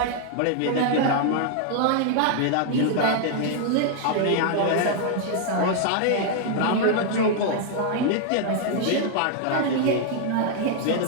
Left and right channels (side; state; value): both; different; correlation 0.00